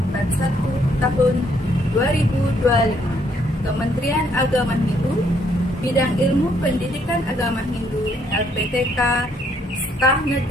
41 tahun 2025, Kementerian Agama Hindu, Bidang Ilmu Pendidikan Agama Hindu, LPTK, Staf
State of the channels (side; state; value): both; normal; correlation 0.69